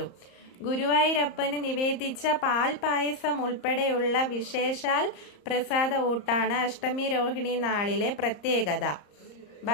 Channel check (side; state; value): right; late; 34 ms